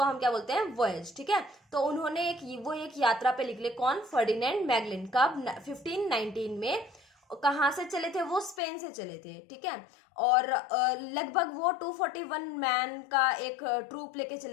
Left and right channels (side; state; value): right; drops out; at 8.6 s